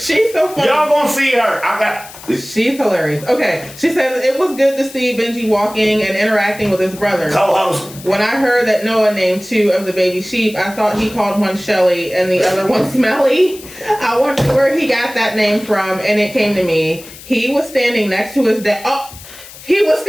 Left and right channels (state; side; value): noise; left; hiss, 17 dB below the sound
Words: so funny. Y'all gonna see her. She's hilarious. Okay. She says, it was good to see Benji walking and interacting with his brother. Co-host. When I heard that Noah named 2 of the baby sheep, I thought he called one Shelly and the other one Smelly. I wondered where he got that name from, and it came to me. He was standing next to his dad. He was